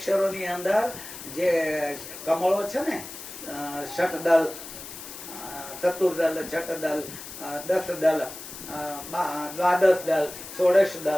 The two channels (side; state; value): left; noise; hiss, 12 dB below the sound